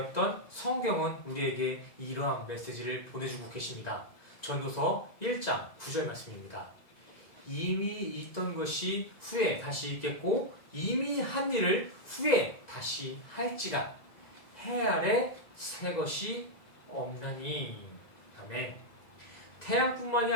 성경은 우리에게 이러한 메시지를 보내주고 계십니다. 전도서 1장 9절 말씀입니다. 이미 있던 것이 후에 다시 있겠고 이미 한 일을 후에 다시 할지라 해 아래 새 것이 없나니. 아멘. 태양뿐만이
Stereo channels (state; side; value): late; right; 2.0 ms